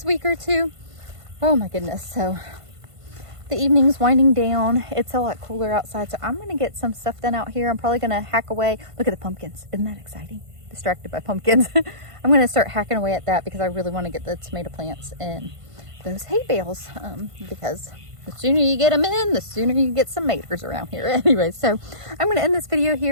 week or two. Oh my goodness. So the evening's winding down. It's a lot cooler outside, so I'm gonna get some stuff done out here. I'm probably gonna hack away. Look at the pumpkins. Isn't that exciting? Distracted by pumpkins. I'm gonna start hacking away at that because I really want to get the tomato plants in those hay bales, because the sooner you get them in, the sooner you get some maters around here. Anyway, so I'm going to end this video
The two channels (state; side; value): late; left; 1.5 ms